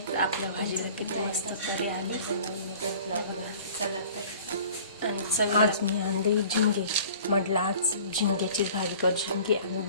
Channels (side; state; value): both; inverted; correlation -0.47